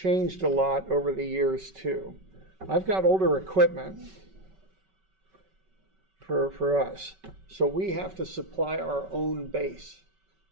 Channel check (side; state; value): left; late; 5.3 ms